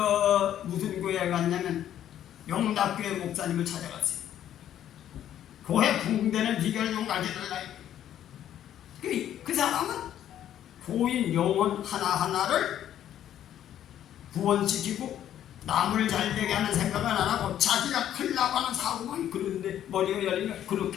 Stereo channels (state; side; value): quieter; right; 11.0 dB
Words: 무슨 교회에 갔냐면 영락교회 목사님을 찾아갔어요. 교회 붕대는 비결을 좀 가르쳐달라. 그 사람은 교인 영혼 하나하나를 구원시키고 남을 잘되게 하는 생각은 안 하고 자기가 큰일 나고 하는 사고만 그런데 머리가 열리면